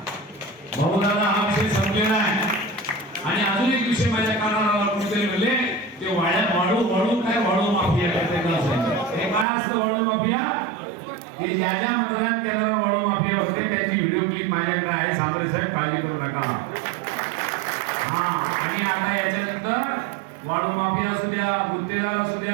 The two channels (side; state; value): left; drops out; at 9.5 s